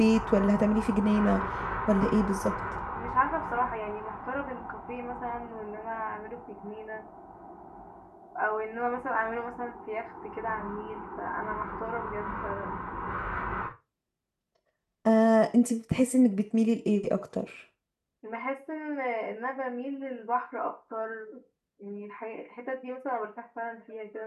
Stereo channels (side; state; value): both; identical; correlation 1.00